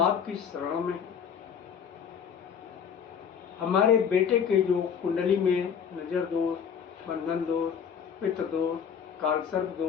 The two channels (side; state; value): right; quieter; 7.4 dB